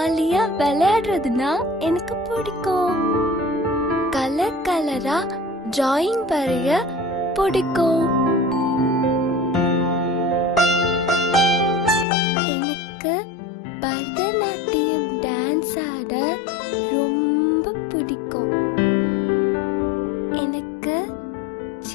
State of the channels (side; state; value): right; drops out; at 12.1 s